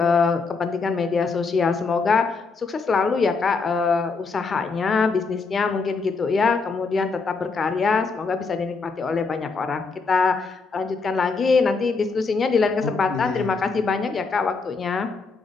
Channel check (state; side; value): quieter; right; 4.5 dB